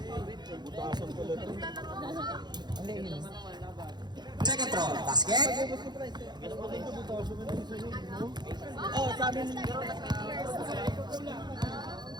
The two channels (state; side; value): late; left; 0.21 ms